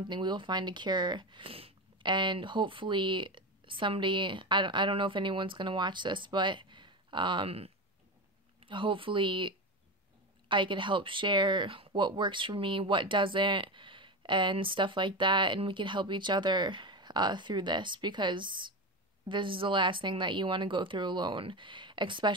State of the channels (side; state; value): both; normal; correlation 0.20